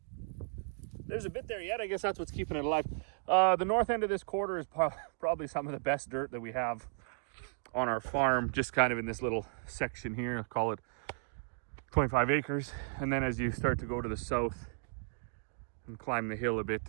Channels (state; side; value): silent; left; digital silence